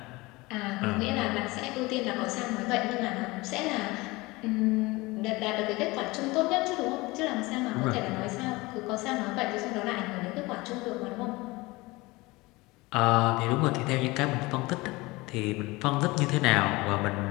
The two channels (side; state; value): right; quieter; 22.3 dB